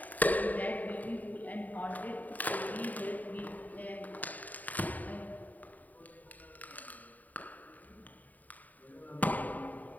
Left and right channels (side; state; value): right; late; 0.078 ms